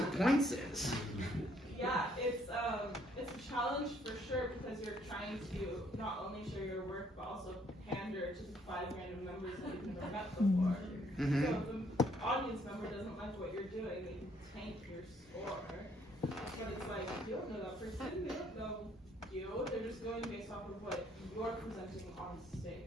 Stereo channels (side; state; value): both; normal; correlation 0.67